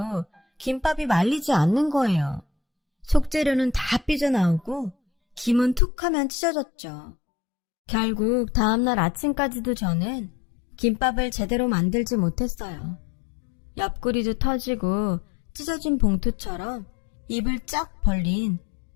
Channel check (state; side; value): drops out; right; at 5.8 s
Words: 김밥이 말리지 않는 거예요. 속재료는 다 삐져나오고 김은 툭 하면 찢어졌죠. 결국 다음날 아침까지도 저는 김밥을 제대로 만들지 못했어요. 옆구리도 터지고 찢어진 봉투처럼 입을 쫙 벌린